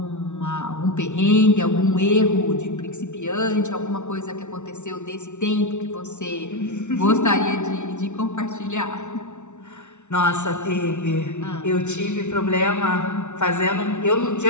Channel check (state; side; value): late; right; 0.83 ms